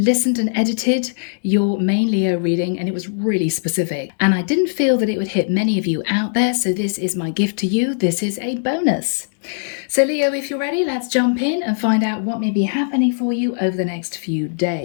and edited your main Leo reading, and it was really specific. And I didn't feel that it would hit many of you out there, so this is my gift to you. This is a bonus. So Leo, if you're ready, let's jump in and find out what may be happening for you over the next few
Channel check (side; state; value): right; silent; digital silence